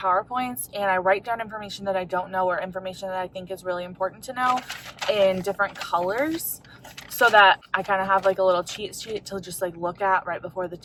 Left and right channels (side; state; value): both; identical; correlation 1.00